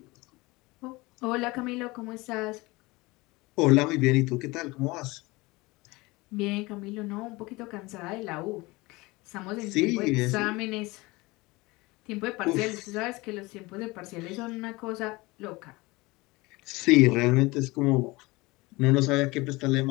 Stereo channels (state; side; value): quieter; right; 22.7 dB